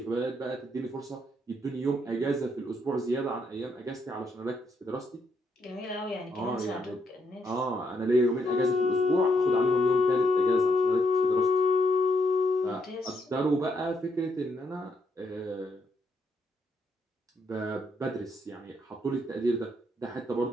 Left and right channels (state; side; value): normal; both; correlation 0.76